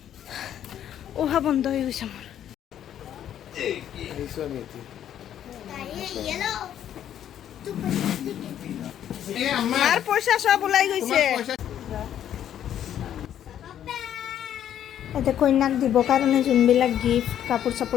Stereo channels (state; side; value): quieter; right; 10.4 dB